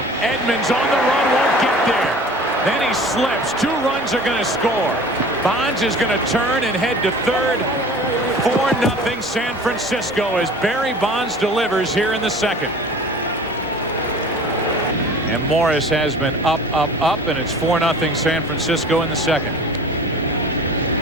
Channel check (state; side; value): normal; both; correlation 0.42